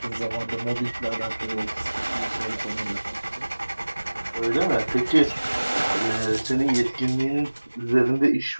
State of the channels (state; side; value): inverted; both; correlation -1.00